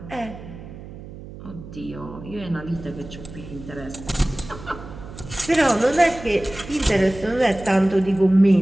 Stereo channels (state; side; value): noise; right; hum, 14 dB below the sound